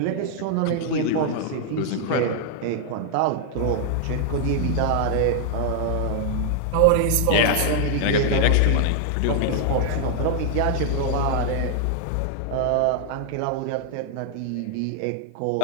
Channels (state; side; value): different; both; correlation 0.00